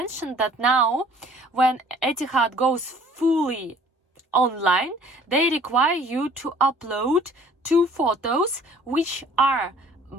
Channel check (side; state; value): both; normal; correlation 0.53